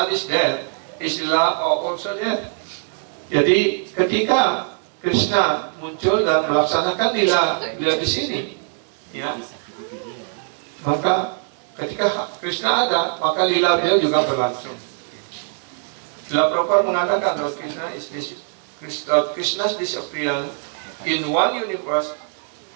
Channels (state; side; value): silent; left; 61 dB below the other